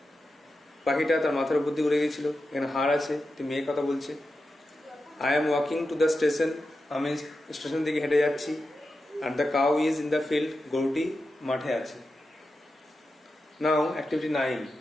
পাখিটা তার মাথার উপর দিয়ে উড়ে গেছিল। এখানে হার আছে, মেয়ে কথা বলছে। I am walking to the station, আমি স্টেশন দিকে হেঁটে যাচ্ছি। আর the cow is in the field, গরুটি মাঠে আছে। নাও অ্যাক্টিভিটি 9,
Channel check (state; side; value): normal; both; correlation 0.90